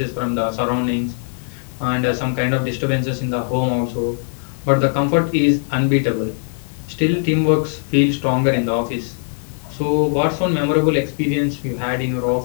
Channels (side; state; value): right; silent; digital silence